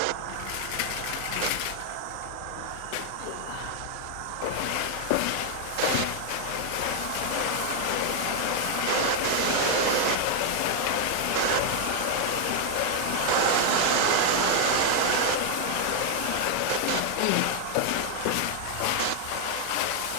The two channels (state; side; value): different; both; correlation 0.00